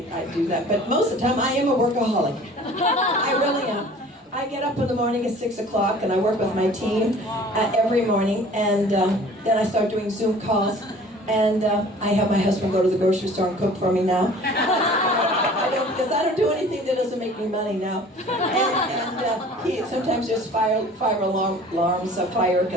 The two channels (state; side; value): normal; both; correlation 0.48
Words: do that, but most of the time I am a workaholic. I really am. I get up in the morning at 6 o'clock and I work with my team every morning, and then I start doing Zoom calls, and I have my husband go to the grocery store and cook for me now. Because I don't do anything that doesn't make me money now. And he sometimes just fire alarms of fire